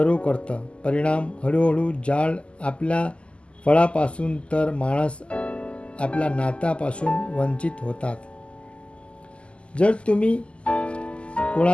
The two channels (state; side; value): late; right; 0.054 ms